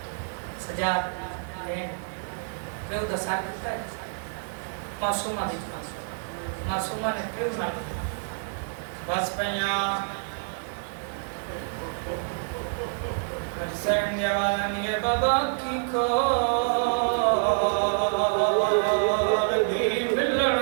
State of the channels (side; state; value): left; silent; digital silence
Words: सजाद क्यों दसा कितना मासूमा दी मासूमा ने क्यों ना बस पैया हुसैन ने आवाज़ दी है बाबा की को